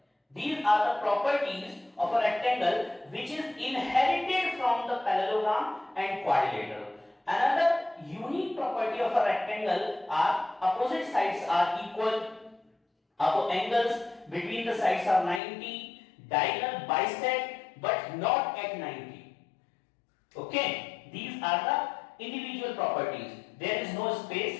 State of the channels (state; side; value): drops out; right; at 15.4 s